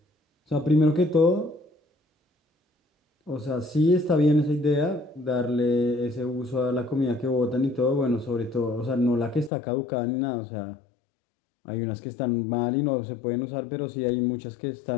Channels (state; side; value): drops out; right; at 9.5 s